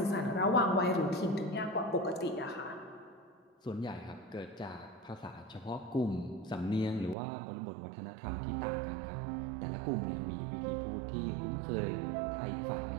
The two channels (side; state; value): left; drops out; at 7.2 s